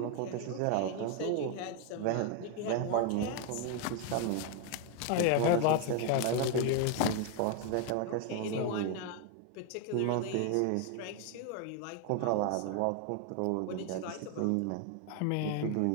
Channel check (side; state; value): both; different; correlation 0.01